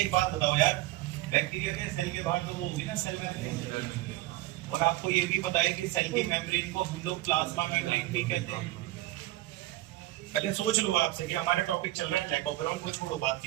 बात बताओ यार, बैक्टीरिया के सेल के बाहर तो वो होगी ना सेल मेम्ब्रेन, और आपको ये भी पता है कि सेल की मेम्ब्रेन को हम लोग प्लाज्मा मेम्ब्रेन भी कहते हैं। पहले सोच लो आपसे कि हमारा टॉपिक चल रहा है लैक ऑफ ग्राउंड को छोड़ो, बात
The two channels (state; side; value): quieter; left; 17.1 dB